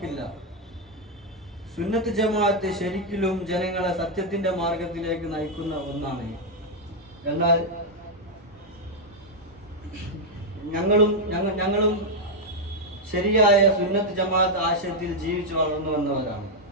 സുന്നത്ത് ജമാഅത്ത് ശരിക്കും ജനങ്ങളെ സത്യത്തിന്റെ മാർഗത്തിലേക്ക് നയിക്കുന്ന ഒന്നാണ്. എന്നാൽ ഞങ്ങളും ശരിയായ സുന്നത്ത് ജമാഅത്ത് ആശയത്തിൽ ജീവിച്ചു വളർന്നു വന്നവരാണ്.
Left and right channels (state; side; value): normal; both; correlation -0.01